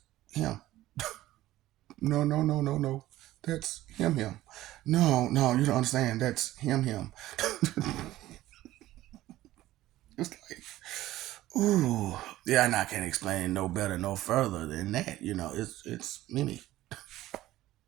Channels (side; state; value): left; quieter; 15.5 dB